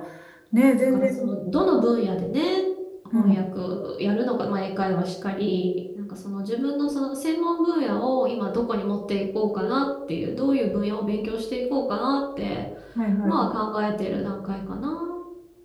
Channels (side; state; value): both; identical; correlation 1.00